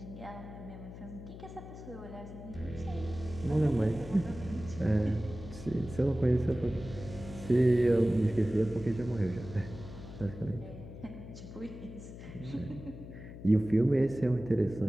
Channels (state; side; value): noise; left; hum, 13 dB below the sound